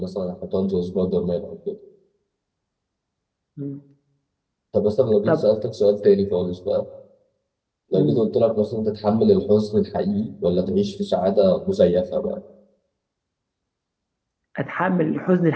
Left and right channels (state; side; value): identical; both; correlation 1.00